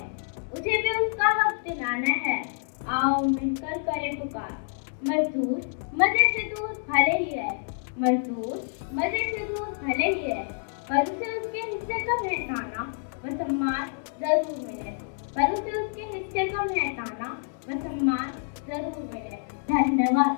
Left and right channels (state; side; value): silent; right; digital silence